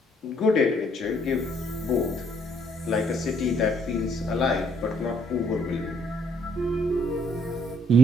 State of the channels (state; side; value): normal; both; correlation 0.66